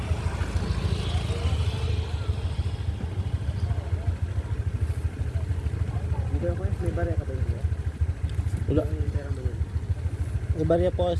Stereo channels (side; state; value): both; identical; correlation 1.00